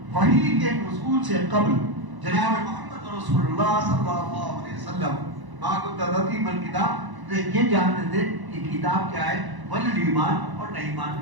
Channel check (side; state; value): left; late; 1.0 ms